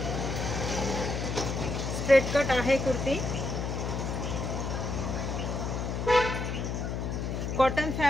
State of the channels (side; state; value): left; noise; hum, 2 dB below the sound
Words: स्ट्रेट कट आहे कुर्ती। कॉटन